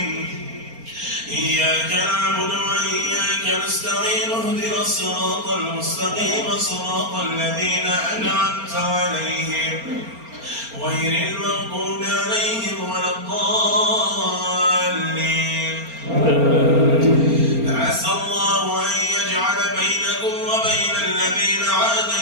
إياك نعبد وإياك نستعين اهدنا الصراط المستقيم صراط الذين أنعمت عليهم غير المغضوب عليهم ولا الضالين. عسى الله أن يجعل بينكم وبين الذين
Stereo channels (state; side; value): late; left; 4.3 ms